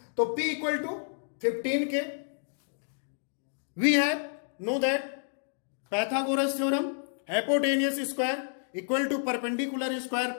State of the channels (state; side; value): silent; right; digital silence